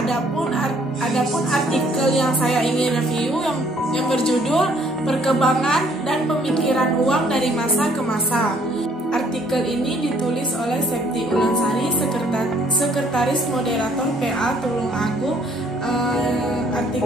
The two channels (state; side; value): normal; both; correlation 0.62